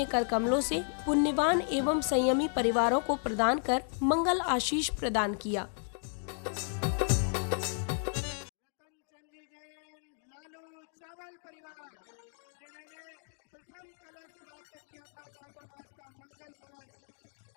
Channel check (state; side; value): silent; right; 55 dB below the other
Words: कर कमलों से पुण्यवान एवं संयमी परिवारों को प्रदान कर मंगल आशीष प्रदान किया। रतन चंद जी जैन लालू चावल परिवार, जिन्होंने प्रथम कलश प्राप्त किया था चातुर्मास का मंगल कलश,